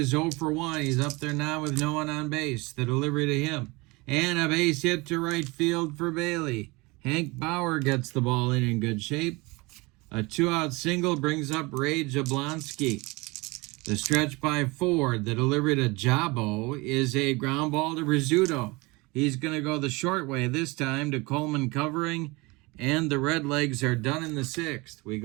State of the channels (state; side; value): quieter; left; 24.6 dB